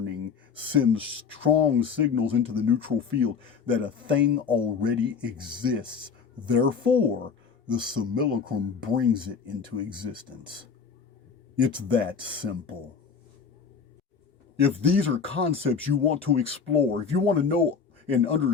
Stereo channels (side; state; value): right; quieter; 6.0 dB